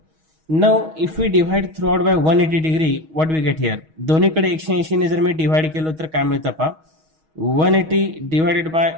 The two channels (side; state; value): left; late; 6.3 ms